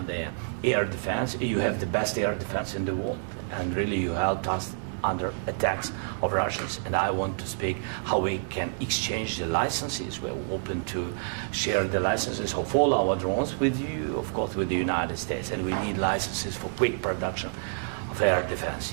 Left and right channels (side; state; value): left; silent; digital silence